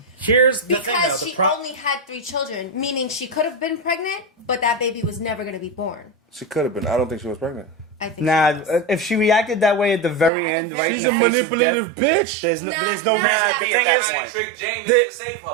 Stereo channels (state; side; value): drops out; left; at 10.3 s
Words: Here's the thing, though. because she only had 3 children, meaning she could have been pregnant, but that baby was never going to be born. She could have been. I don't think she was pregnant. I think. Nah, she was. if she reacted that way at the very Yeah, end, right She's in a the face of manipulative death, bitch. there's no Nah, reason to be at that point. Trick Jaime to save